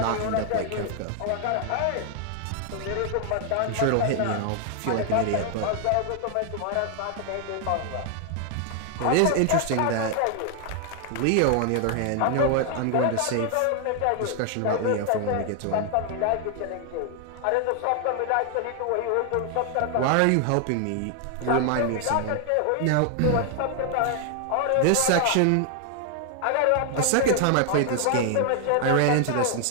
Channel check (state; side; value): different; both; correlation 0.00